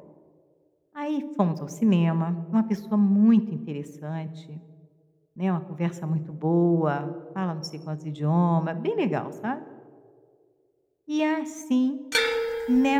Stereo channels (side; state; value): both; identical; correlation 1.00